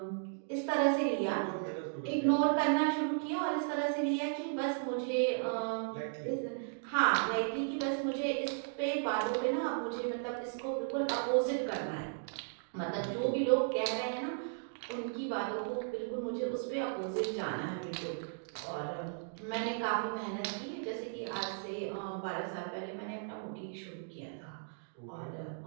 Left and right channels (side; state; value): left; silent; digital silence